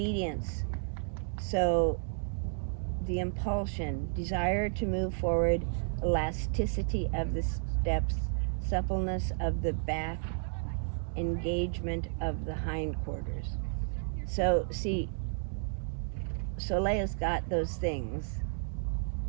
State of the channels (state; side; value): silent; left; digital silence